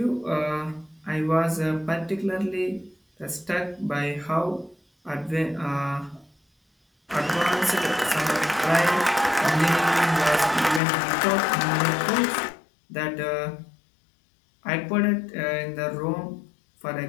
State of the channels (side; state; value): right; drops out; at 10.8 s